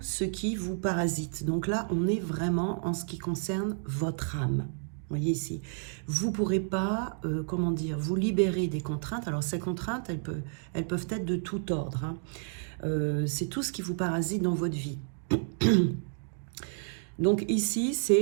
ce qui vous parasite. Donc là, on est vraiment en ce qui concerne votre âme. Vous voyez ici, vous ne pourrez pas, vous libérer des contraintes. Alors ces contraintes, elles peuvent être de tout ordre. C'est tout ce qui vous parasite dans votre vie. Donc ici,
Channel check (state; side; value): silent; left; digital silence